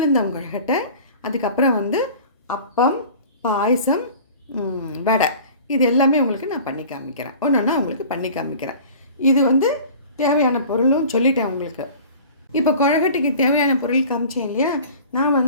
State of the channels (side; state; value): both; inverted; correlation -0.43